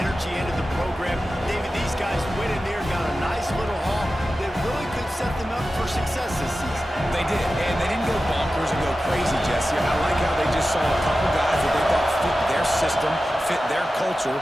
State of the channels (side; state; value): both; normal; correlation 0.94